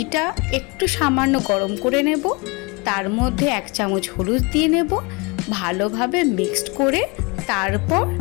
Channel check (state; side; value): quieter; right; 28.4 dB